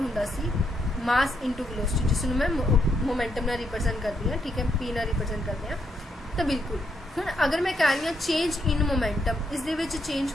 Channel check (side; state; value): both; normal; correlation 0.77